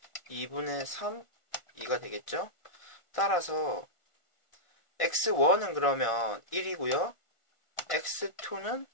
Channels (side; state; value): right; late; 1.4 ms